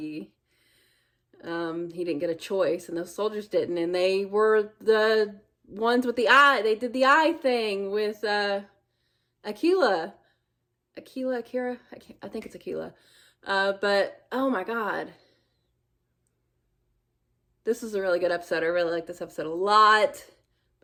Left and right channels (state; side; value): identical; both; correlation 1.00